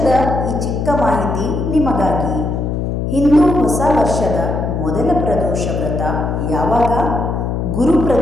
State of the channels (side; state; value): left; noise; hum, 2 dB below the sound